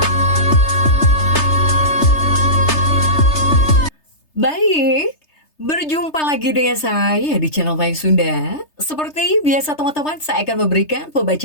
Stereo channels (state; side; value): late; right; 3.3 ms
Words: Baik, berjumpa lagi dengan saya di channel Mayang Sunda. Seperti biasa teman-teman, saya akan memberikan